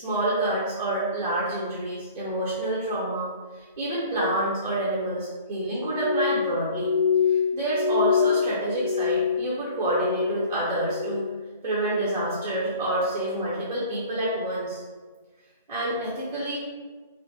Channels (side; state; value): both; inverted; correlation -0.45